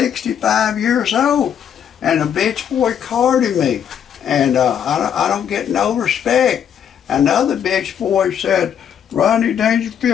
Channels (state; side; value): quieter; right; 8.7 dB